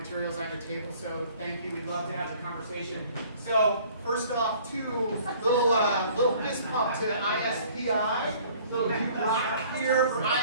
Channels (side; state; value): both; inverted; correlation -0.54